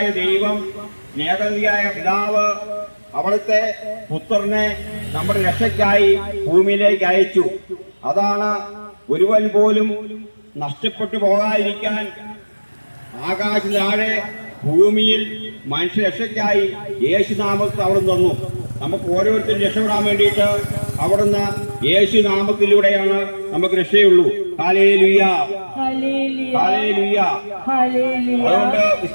ദൈവം, സ്നേഹനിധിയായ പിതാവ് അവിടുത്തെ പുത്രനെ നമ്മുടെ രക്ഷയ്ക്കായി ഭൂമിയിലേക്ക് അയച്ചു. അതാണ് ഒരുവൻ പോലും നഷ്ടപ്പെട്ടു പോകാതിരിക്കാൻ ആകാശ താഴെ ഭൂമിയിൽ മനുഷ്യ രക്ഷയ്ക്കായി യേശുനാമത്തിൽ അവിടുന്ന് തന്നു. നമുക്ക് ഓരോരുത്തരും രക്ഷപ്പെടാൻ വേണ്ടിയിട്ട് അവിടുന്ന് യേശുനാമത്തിലൂടെയാണ് നമുക്ക് രക്ഷയുള്ളൂ. Hallelujah, hallelujah. അതുകൊണ്ട്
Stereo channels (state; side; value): inverted; both; correlation -1.00